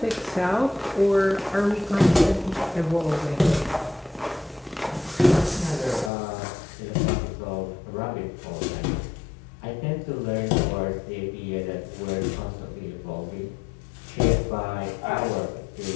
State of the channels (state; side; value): drops out; right; at 6.1 s